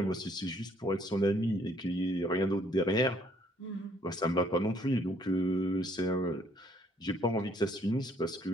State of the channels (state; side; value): normal; both; correlation 0.65